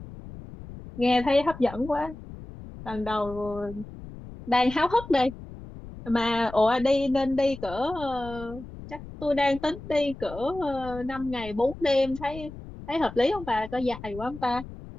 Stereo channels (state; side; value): noise; left; rumble, 14 dB below the sound